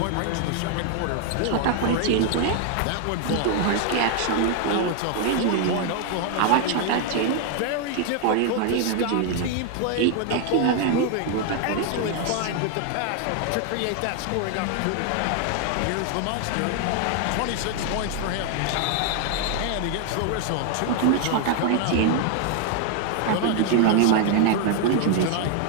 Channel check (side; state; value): both; different; correlation 0.00